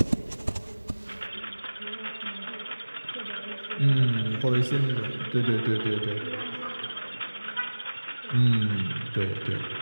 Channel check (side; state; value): both; inverted; correlation -1.00